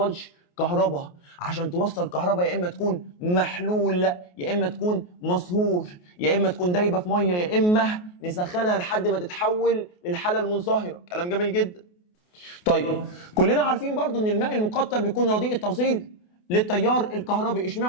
كهرباء. عشان توصل كهرباء يا اما تكون محلول، يا اما تكون مصهور، يا اما تكون دايبه في ميه، يا اما نسخنها لحد ما تتحول للحاله المنصهره. كلام جميل جدا. طيب كلنا عارفين برضو ان الماء المقطر بيكون رديء التوصيل للتيار الكهربي.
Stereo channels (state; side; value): late; right; 28 ms